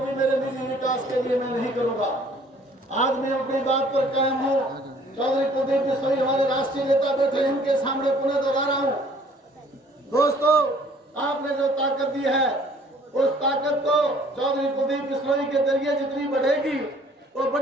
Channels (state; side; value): normal; both; correlation 0.56